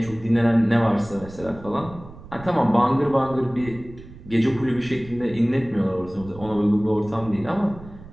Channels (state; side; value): noise; right; rumble, 18 dB below the sound